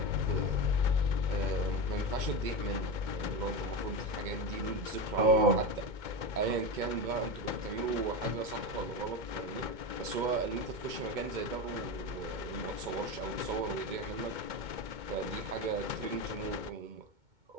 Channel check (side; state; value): left; late; 2.2 ms